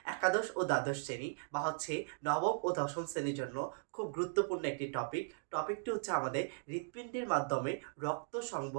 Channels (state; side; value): silent; left; digital silence